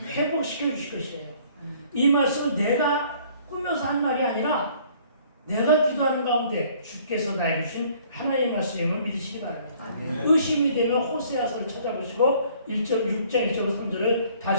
회복시켜 주실 것이에요. 이 말씀은 내가 꾸며서 한 말이 아니라 내가 기도하는 가운데 주께서 나에게 주신 하나님의 말씀임을 믿으시기 바랍니다. 아멘. 의심이 되면 호세아서를 찾아보시고 6장 1절 3절을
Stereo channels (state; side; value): inverted; both; correlation -0.58